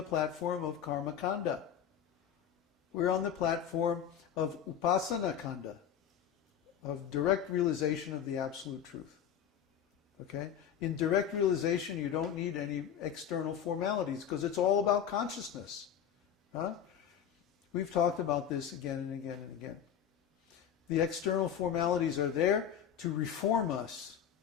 platform of karma kanda. We're on the platform of upasana kanda, of direct realization of the absolute truth. Okay? In direct realization, you don't need any external formalities because it's all about consciousness. We've talked about this again and again and again. The external formalities are there to reform us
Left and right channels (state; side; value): quieter; right; 8.9 dB